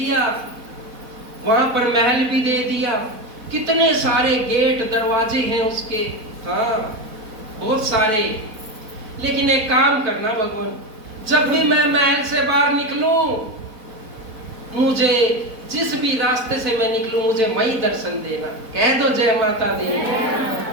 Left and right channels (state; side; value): late; left; 4.1 ms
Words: वहां पर महल भी दे दिया, कितने सारे गेट दरवाजे हैं उसके, हाँ बहुत सारे। लेकिन एक काम करना भगवान, जब भी मैं महल से बाहर निकलूं, मुझे जिस भी रास्ते से मैं निकलूं, मुझे वही दर्शन देना। कह दो जय माता